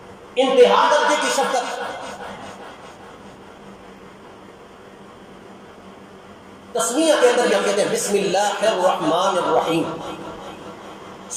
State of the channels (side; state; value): both; identical; correlation 1.00